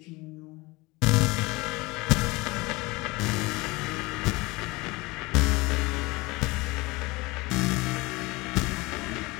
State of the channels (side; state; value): right; quieter; 23.2 dB